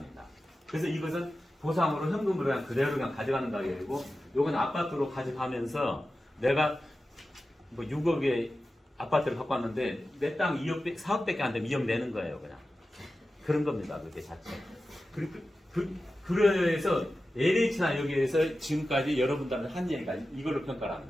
그래서 이것은 보상으로 현금으로 그냥 그대로 그냥 가져가는 가격이고, 요건 아파트로 가져가면서 내가 뭐 6억의 아파트를 갖고 왔는데 내 땅 2억, 4억밖에 안 되면 2억 내는 거예요, 그냥. 그런 겁니다, 그게 자체. 그래서 LH나 여기에서 지금까지 여러분들한테 한 얘기가 이걸로 평가를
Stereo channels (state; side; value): normal; both; correlation 0.93